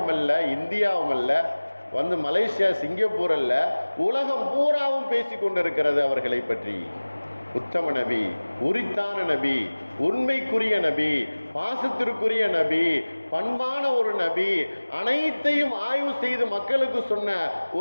அல்ல, இந்தியாவும் அல்ல, வந்து மலேசியா, சிங்கப்பூர் அல்ல, உலகம் பூராவும் பேசிக்கொண்டிருக்கிறது அவர்களை பற்றி. உத்தம நபி, உரித்தான நபி, உண்மைக்குரிய நபி, பாசத்திற்குரிய நபி, பண்பான ஒரு நபி, அனைத்தையும் ஆய்வு செய்து மக்களுக்கு சொன்ன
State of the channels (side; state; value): both; inverted; correlation -1.00